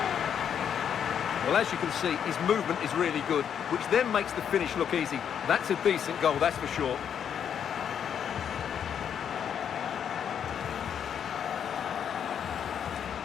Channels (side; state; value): right; quieter; 8.4 dB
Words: Well, as you can see, his movement is really good, which then makes the finish look easy. That's a decent goal, that's for sure.